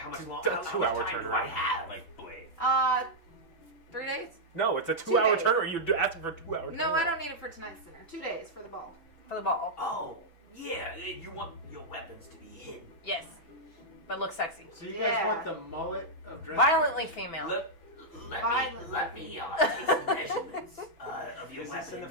much It's long, a how much 2-hour time do I turnaround. have? Like Blade. 3 days? No, it's a 2-hour days. turn. Or you're asking for a 2-hour turn. No, I don't need it for tonight's dinner. 2 days for the ball. For the ball. Oh, yeah, you want your weapons to be hidden. Yes. But look sexy. So you guys Yeah. want the mullet of dress? Violently female. Let me take some measurements of your Is weapons. this in the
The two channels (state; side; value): late; right; 6.0 ms